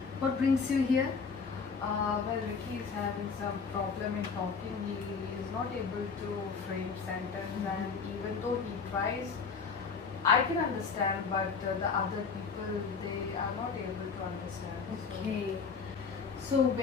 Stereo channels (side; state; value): right; quieter; 5.4 dB